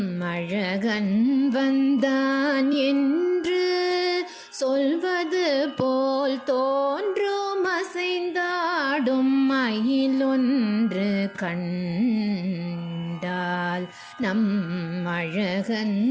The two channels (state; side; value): identical; both; correlation 1.00